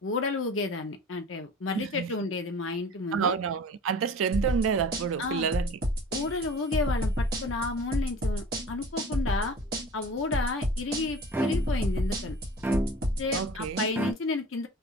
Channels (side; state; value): both; normal; correlation 0.42